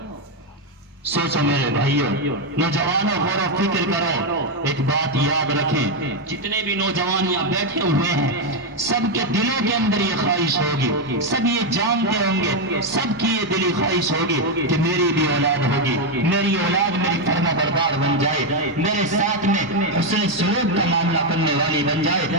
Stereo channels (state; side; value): normal; both; correlation 0.04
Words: سوچو میرے بھائیوں، نوجوانوں غور و فکر کرو، ایک بات یاد رکھیں، جتنے بھی نوجوان یہاں بیٹھے ہوئے ہیں سب کے دلوں کے اندر یہ خواہش ہوگی، سب یہ جانتے ہوں گے، سب کی یہ دلی خواہش ہوگی کہ میری بھی اولاد ہوگی، میری اولاد میری فرما بردار بن جائے، میرے ساتھ میں حسن سلوک کا معاملہ کرنے والی بن جائے۔